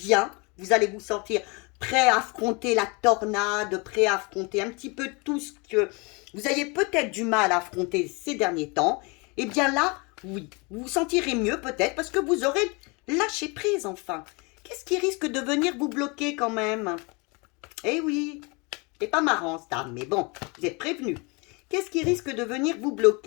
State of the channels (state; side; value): quieter; right; 29.3 dB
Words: Vous allez vous sentir prêt à affronter la tornade, prêt à affronter un petit peu tout ce que vous ayez peut-être du mal à affronter ces derniers temps. Eh bien là, oui, vous vous sentirez mieux peut-être parce que vous aurez lâché prise enfin. Qu'est-ce qui risque de venir vous bloquer quand même? Eh oui, c'est pas marrant ça, mais bon, vous êtes prévenus. Qu'est-ce qui risque de venir vous